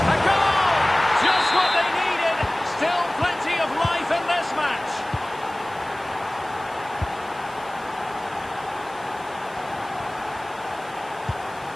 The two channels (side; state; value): right; noise; hiss, 22 dB below the sound